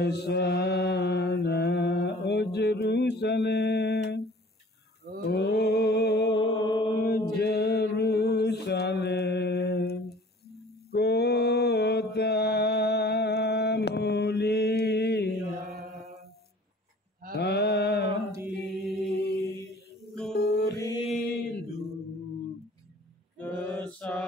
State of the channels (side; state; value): both; normal; correlation 0.49